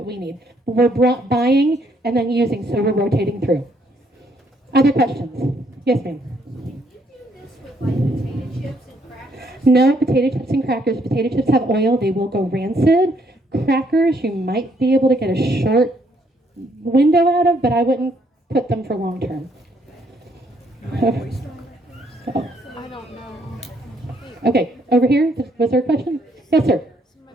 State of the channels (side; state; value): both; normal; correlation 0.70